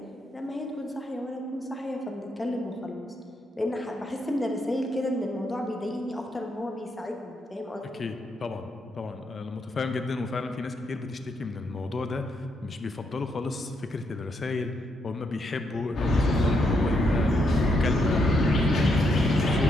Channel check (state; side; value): normal; both; correlation 0.78